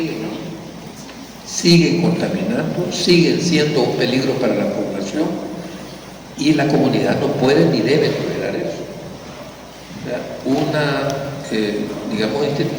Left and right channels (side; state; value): both; identical; correlation 1.00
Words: siguen contaminando, siguen siendo un peligro para la población y la comunidad no puede ni debe tolerar eso. O sea, una, digamos,